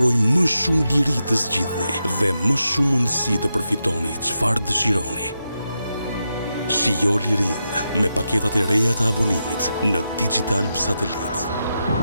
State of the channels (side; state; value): both; inverted; correlation -0.87